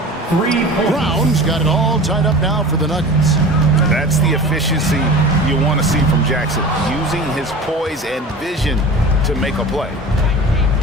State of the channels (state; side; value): normal; both; correlation 0.36